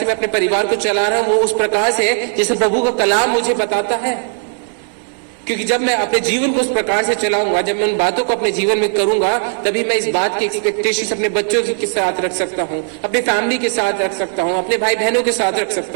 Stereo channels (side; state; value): left; silent; 68 dB below the other